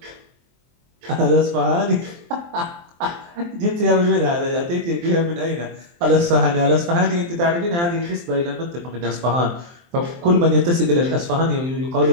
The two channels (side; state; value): left; late; 23 ms